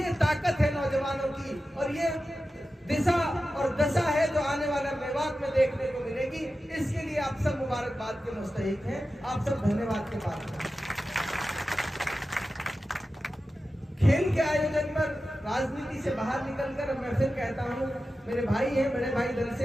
ताकत है नौजवानों की और ये दिशा और दशा है जो आने वाला मेवात में देखने को मिलेगी। इसके लिए आप सब मुबारकबाद के मुस्तहिक हैं, आप सब धन्यवाद के पात्र हैं। खेल के आयोजन पर राजनीति से बाहर निकलकर मैं फिर कहता हूँ, मेरे भाई हैं, बड़े भाई दल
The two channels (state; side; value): normal; both; correlation 0.93